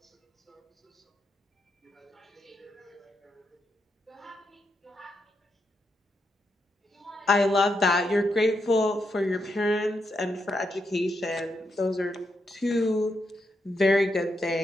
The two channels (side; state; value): both; normal; correlation 0.82